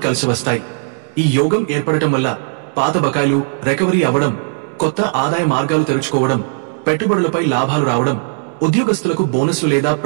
కలిసి వస్తాయి. ఈ యోగం ఏర్పడటం వల్ల పాత బకాయిలు రికవరీ అవ్వడం, కొత్త ఆదాయ మార్గాలు తెరుచుకోవడం, పెట్టుబడులపై లాభాలు రావడం, ఉద్యోగస్తులకు బోనస్లు లేదా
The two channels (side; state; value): left; silent; digital silence